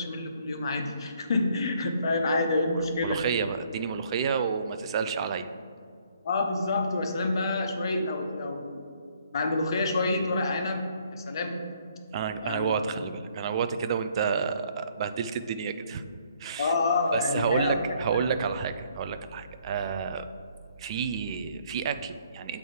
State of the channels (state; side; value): inverted; both; correlation -0.64